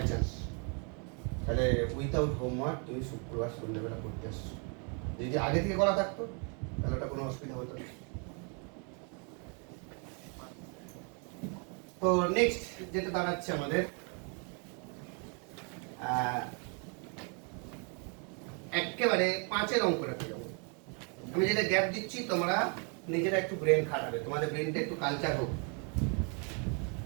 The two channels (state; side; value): quieter; left; 37.1 dB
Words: চান্স, তাহলে উইথাউট হোমওয়ার্ক তুমি শুক্রবার সন্ধ্যাবেলা করতে আসছো। যদি আগে থেকে করা থাকতো তাহলে ওটা কোনো অসুবিধা হতো না। তো নেক্সট যেটা দাঁড়াচ্ছে আমাদের, একেবারে 5-এর অঙ্কটাতে যাবো। আমি যেটা গ্যাপ দিচ্ছি তোমরা নিজেরা একটু ব্রেন খাটাবে, তোমাদের ব্রেনটা একটু কালচার হোক।